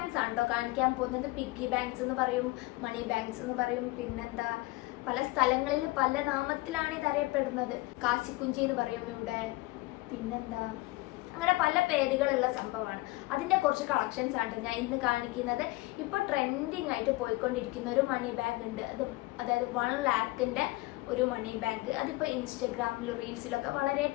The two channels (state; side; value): quieter; right; 21.4 dB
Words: ആണോ കാണിക്കാൻ പോകുന്നത്. പിഗ്ഗി ബാങ്ക്സ് എന്ന് പറയും, മണി ബാങ്ക്സ് എന്ന് പറയും, പിന്നെന്താ പല സ്ഥലങ്ങളിൽ പല നാമത്തിലാണ് ഇത് അറിയപ്പെടുന്നത്. കാശിക്കുഞ്ചി എന്ന് പറയും ഇവിടെ, പിന്നെന്താ അങ്ങനെ പല പേരുകളുള്ള സംഭവമാണ്. അതിൻ്റെ കുറച്ച് കളക്ഷൻസ് ആണ് ഞാൻ ഇന്ന് കാണിക്കുന്നത്. ഇപ്പോൾ ട്രെൻഡിങ് ആയിട്ട് പോയിക്കൊണ്ടിരിക്കുന്ന ഒരു മണി ബാഗ് ഉണ്ട്. അതായത് 1 lakhന്റെ ഒരു മണി ബാഗ്. അതിപ്പോൾ ഇൻസ്റ്റഗ്രാമിലും റീൽസിലൊക്കെ വളരെ